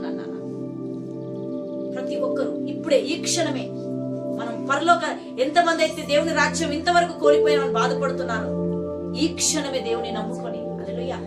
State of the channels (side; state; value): both; identical; correlation 1.00